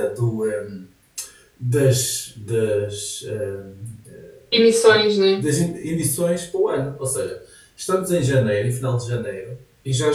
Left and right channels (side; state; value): both; identical; correlation 1.00